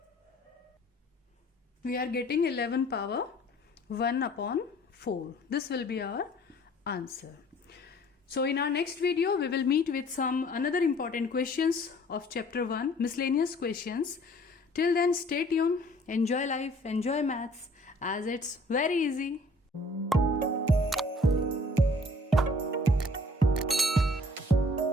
we are getting 11 power 1 upon 4. This will be our answer. So in our next video we will meet with some another important questions of chapter 1, miscellaneous questions. Till then, stay tuned, enjoy life, enjoy maths, as it's very easy.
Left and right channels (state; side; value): normal; both; correlation 0.55